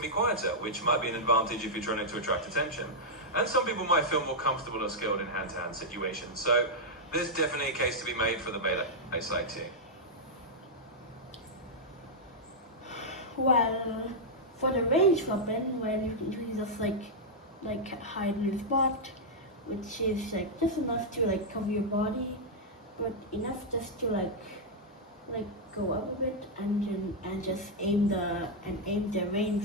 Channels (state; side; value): normal; both; correlation -0.06